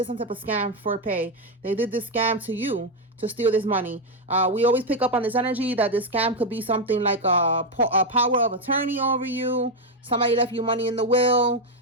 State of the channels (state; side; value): normal; both; correlation 0.05